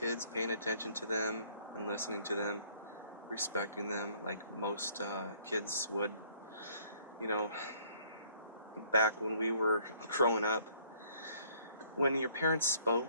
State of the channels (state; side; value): inverted; both; correlation -0.62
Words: paying attention to them and listening to them, respecting them like most kids would. Back when we were growing up, when your parents